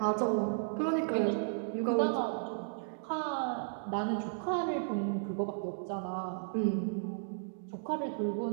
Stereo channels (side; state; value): left; silent; digital silence